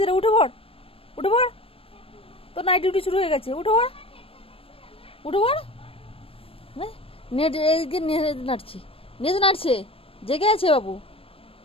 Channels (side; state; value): right; late; 0.27 ms